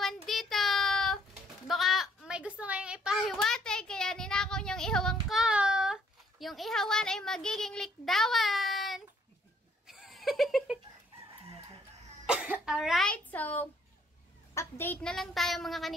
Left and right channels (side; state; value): both; normal; correlation 0.66